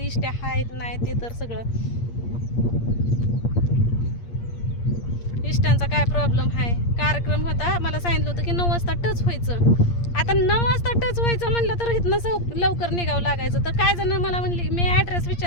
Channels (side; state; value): right; late; 8.6 ms